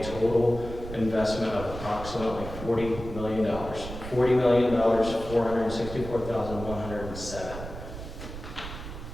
total investment of approximately $40 million. $40,464,107.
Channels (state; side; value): noise; right; rumble, 10 dB below the sound